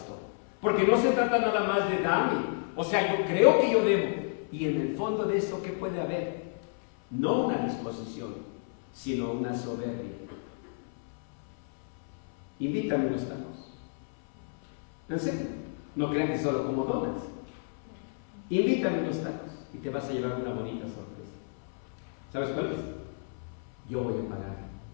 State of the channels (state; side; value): silent; right; 57 dB below the other